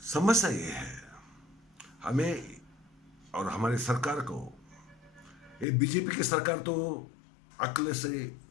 समस्या ये है, हमें और हमारे सरकार को, ये बीजेपी की सरकार तो अक्ल से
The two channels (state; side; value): drops out; right; at 5.7 s